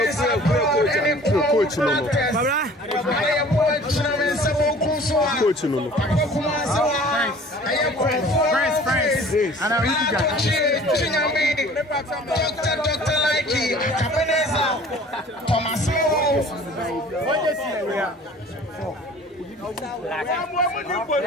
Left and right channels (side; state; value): both; normal; correlation 0.48